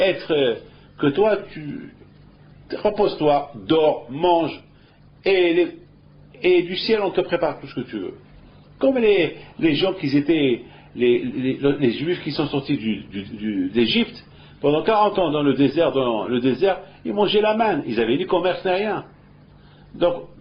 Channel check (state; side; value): identical; both; correlation 1.00